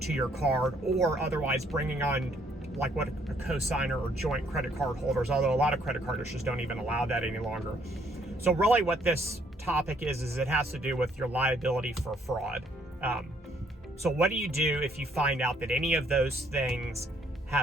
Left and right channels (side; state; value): both; normal; correlation 0.67